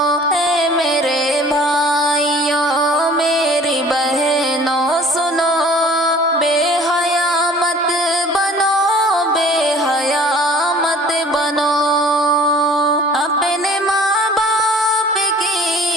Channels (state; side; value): normal; both; correlation 0.50